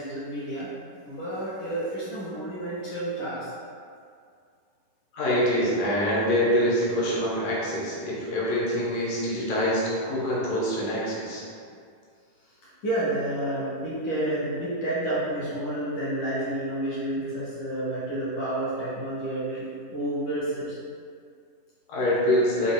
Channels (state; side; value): late; right; 10 ms